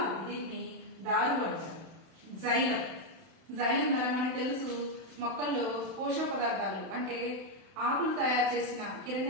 దీన్ని దారు అంటారు. జైలం ద్వారా మనకు తెలుసు మొక్కల్లో పోషక పదార్థాలు అంటే ఆకులు తయారు చేసిన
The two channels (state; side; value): late; left; 31 ms